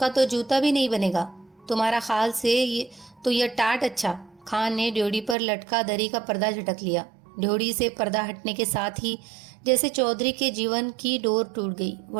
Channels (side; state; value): left; drops out; at 5.4 s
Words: तो जूता भी नहीं बनेगा, तुम्हारा खाल से ये टाट अच्छा। खान ने ड्योढ़ी पर लटका दरी का पर्दा झटक लिया। ड्योढ़ी से पर्दा हटने के साथ ही जैसे चौधरी के जीवन की डोर टूट गई।